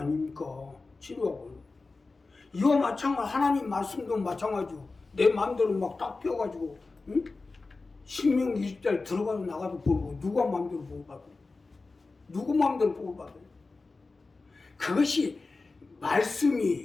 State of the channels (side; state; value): right; quieter; 3.7 dB